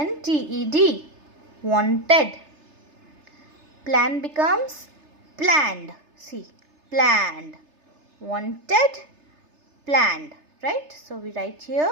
Wanted. Plan becomes planned. See, planned. Wanted, planned. Right? So we write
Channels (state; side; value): late; left; 3.3 ms